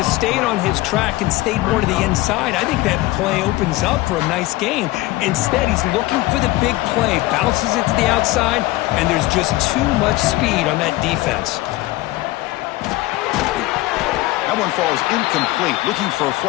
stayed on his track and stayed more to the inside, I think that play opens up for a nice gain. Instead, he's looking for the big play, bounces it to the outside, and there's just too much speed on that defense. That one falls incomplete. Looking for a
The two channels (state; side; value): quieter; right; 18.7 dB